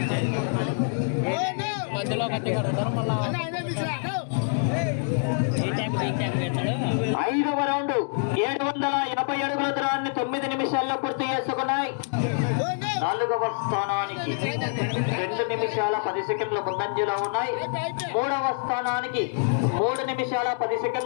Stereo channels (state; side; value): silent; right; digital silence